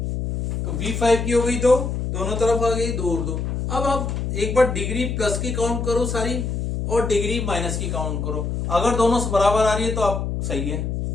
तो V5 की हो गई 2, दोनों तरफ आ गई 2 और 2। अब आप एक बार डिग्री प्लस की काउंट करो सारी और डिग्री माइनस की काउंट करो, अगर दोनों से बराबर आ रही है तो आप सही है।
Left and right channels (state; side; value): noise; left; hum, 2 dB below the sound